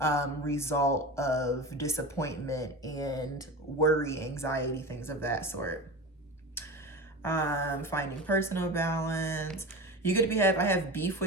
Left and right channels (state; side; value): normal; both; correlation 0.28